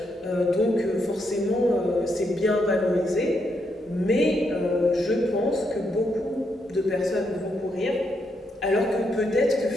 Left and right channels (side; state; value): both; normal; correlation 0.79